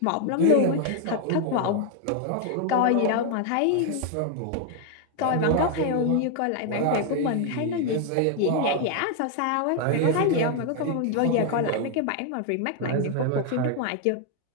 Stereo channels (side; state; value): both; different; correlation 0.00